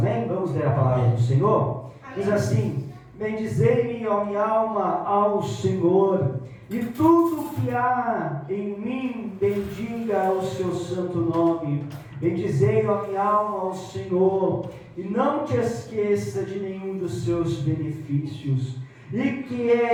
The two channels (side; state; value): both; identical; correlation 1.00